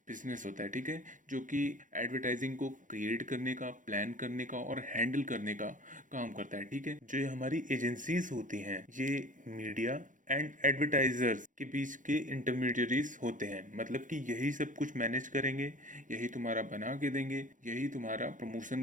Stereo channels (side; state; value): left; late; 0.38 ms